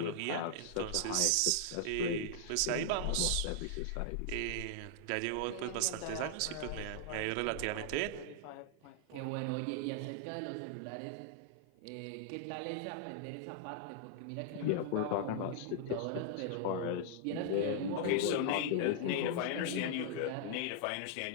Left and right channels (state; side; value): different; both; correlation -0.01